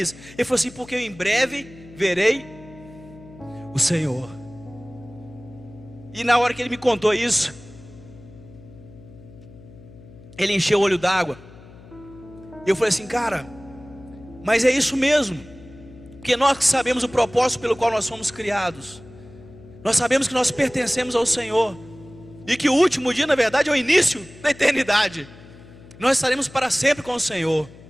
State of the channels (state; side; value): noise; left; hum, 20 dB below the sound